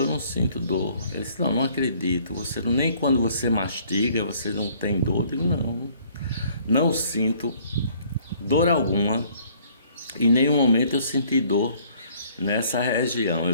eu não sinto dor. Ele disse: não acredito, você nem quando você mastiga você não tem dor. Eu digo: não sinto dor alguma. Em nenhum momento eu senti dor nessa região.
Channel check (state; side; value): inverted; both; correlation -0.59